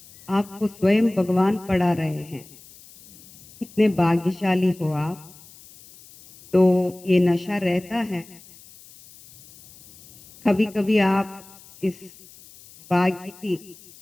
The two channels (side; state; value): left; noise; hiss, 23 dB below the sound